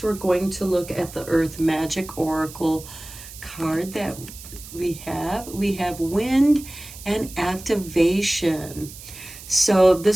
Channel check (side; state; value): right; noise; hiss, 15 dB below the sound